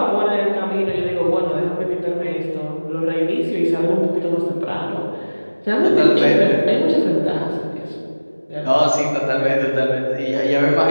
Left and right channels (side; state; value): both; inverted; correlation -1.00